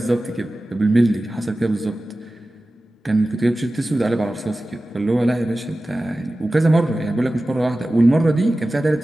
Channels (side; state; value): both; normal; correlation 0.96